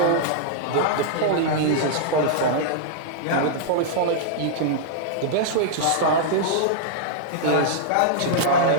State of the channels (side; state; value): both; different; correlation -0.01